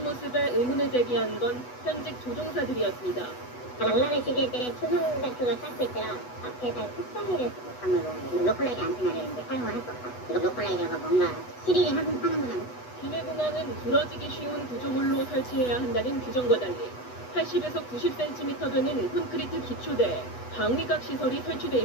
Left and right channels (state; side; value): late; right; 8.1 ms